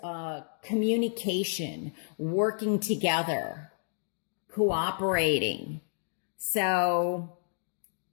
communication, working together, cooperating. So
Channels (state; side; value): silent; right; digital silence